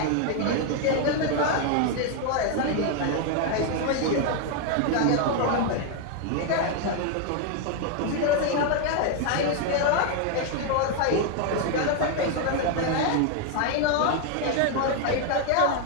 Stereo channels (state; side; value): different; both; correlation 0.01